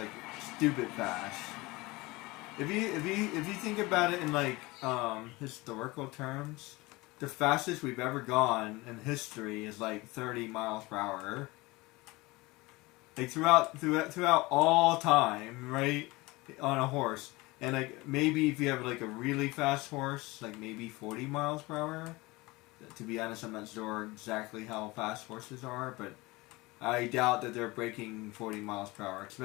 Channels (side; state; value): right; quieter; 22.3 dB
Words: stupid fast. If you think about it in like historical terms, the fastest we've ever gone in history is like 30 miles per hour. Like throughout all time, right? On a horse. And like maybe if you have like a really fast horse, like maybe 40 miles per hour. To be honest, I'm not sure exactly how fast horses are, but I doubt that they're breaking 40 miles per hour,